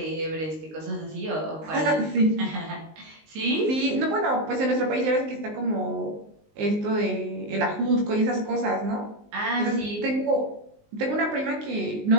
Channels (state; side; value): late; left; 19 ms